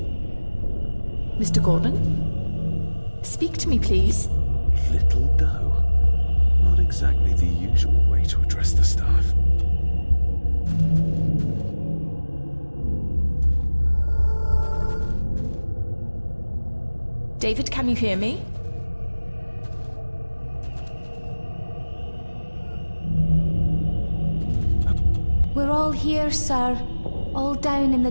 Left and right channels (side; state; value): both; inverted; correlation -1.00